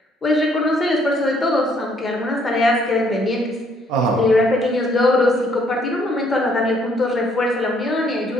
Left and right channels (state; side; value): normal; both; correlation 0.66